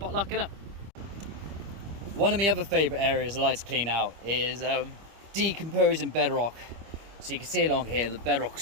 innit? One of my other favourite areas I like to clean out is decomposing bedrock. So you can see along here, the bedrock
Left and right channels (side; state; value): left; late; 25 ms